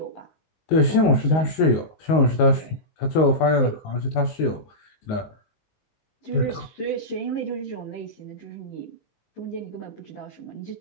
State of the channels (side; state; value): right; late; 19 ms